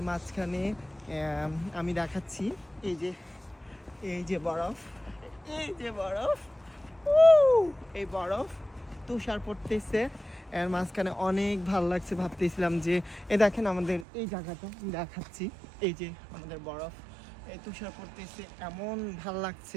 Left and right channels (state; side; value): drops out; left; at 14.1 s